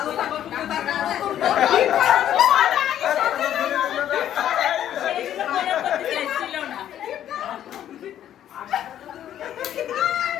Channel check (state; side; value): quieter; right; 11.0 dB